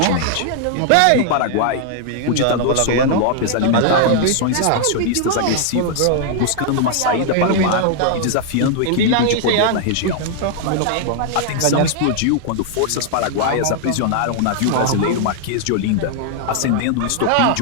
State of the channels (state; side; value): different; both; correlation 0.00